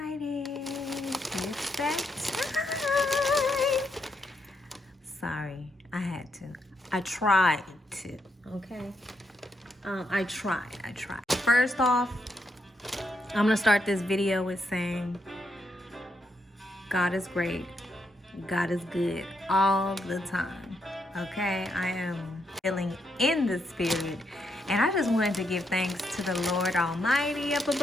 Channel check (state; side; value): normal; both; correlation 0.79